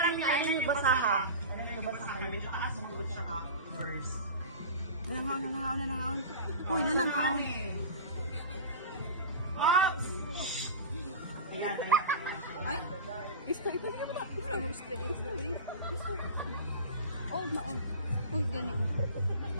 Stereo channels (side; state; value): both; inverted; correlation -0.32